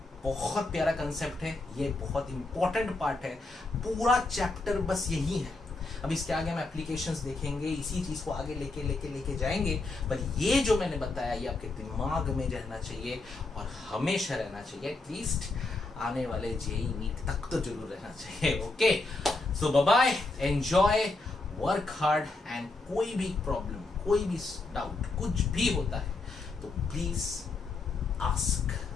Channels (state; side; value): quieter; right; 3.3 dB